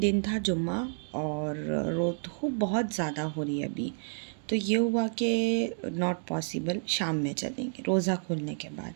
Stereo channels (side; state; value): left; silent; digital silence